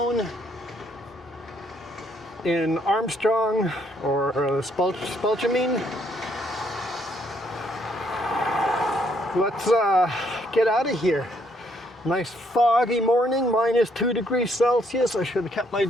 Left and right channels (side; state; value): both; normal; correlation 0.69